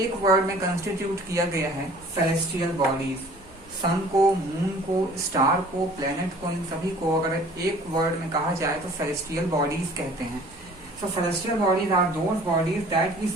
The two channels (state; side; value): normal; both; correlation 0.50